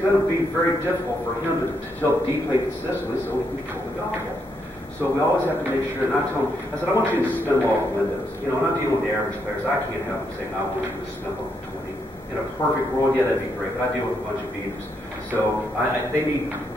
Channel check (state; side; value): normal; both; correlation 0.78